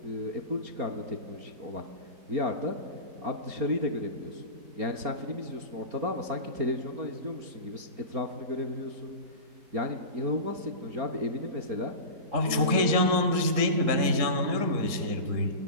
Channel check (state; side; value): late; left; 3.8 ms